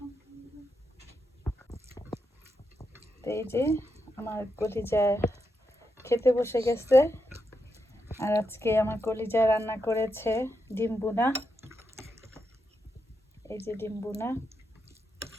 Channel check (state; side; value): normal; both; correlation 0.84